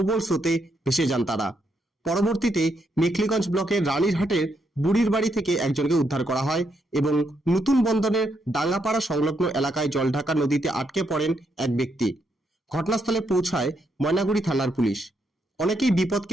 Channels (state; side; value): normal; both; correlation 0.78